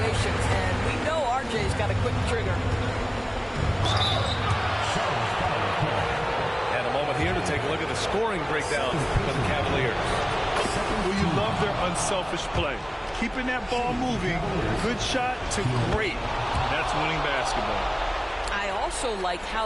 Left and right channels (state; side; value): identical; both; correlation 1.00